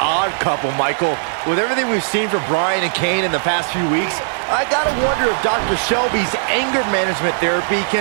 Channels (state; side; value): silent; left; digital silence